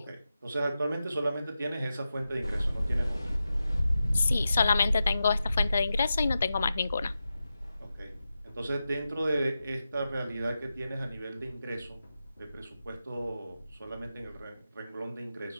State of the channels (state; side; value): inverted; both; correlation -0.91